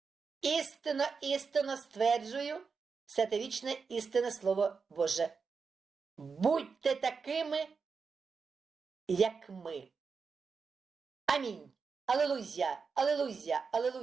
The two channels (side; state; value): left; quieter; 5.2 dB